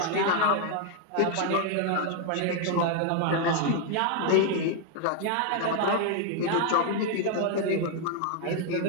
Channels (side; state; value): both; different; correlation 0.00